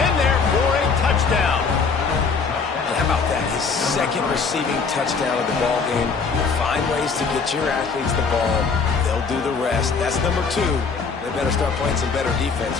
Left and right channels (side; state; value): right; quieter; 5.1 dB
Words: in there for a touchdown. And how about that? His 2nd receiving touchdown of the ball game. Find ways to get your athletes the ball. They'll do the rest. That's number 2. They better start playing some better defense,